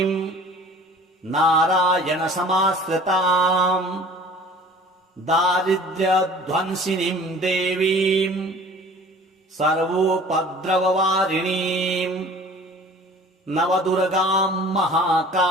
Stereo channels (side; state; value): both; normal; correlation 0.46